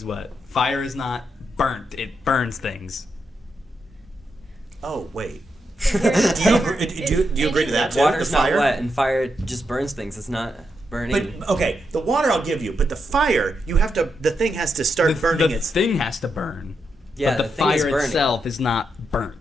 wet. Fire is not burnt. It burns things. Oh, wait. Do Do you agree to that too? Water's The not fire? wet, and fire just burns things. It's not burning. But, okay, the water I'll give you, but the fire, the thing has to start burning The its... thing has to burn. Yeah, but the the thing is fire burning. itself is not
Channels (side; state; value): both; normal; correlation 0.83